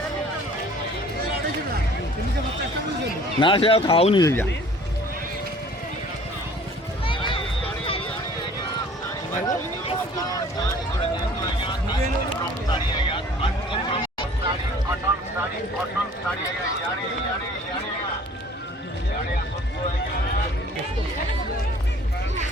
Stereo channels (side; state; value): both; normal; correlation 0.51